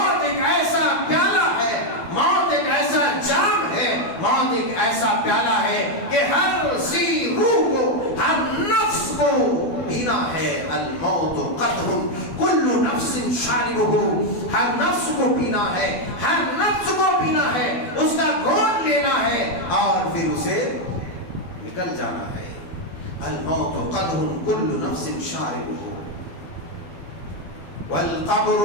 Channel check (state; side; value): late; right; 12 ms